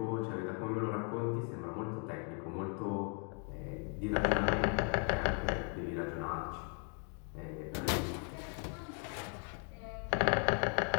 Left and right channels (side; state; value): right; quieter; 39.9 dB